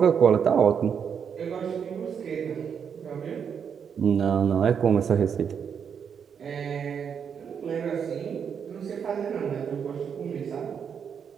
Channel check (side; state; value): left; quieter; 7.3 dB